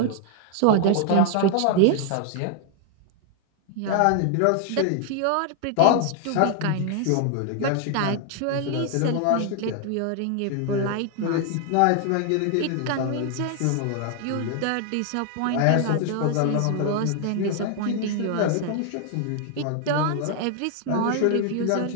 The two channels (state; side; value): different; both; correlation 0.00